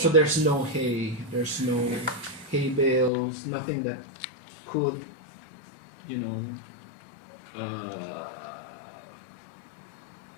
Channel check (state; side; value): drops out; right; at 3.1 s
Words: there's no hay, there's no hay bales, nothing that could,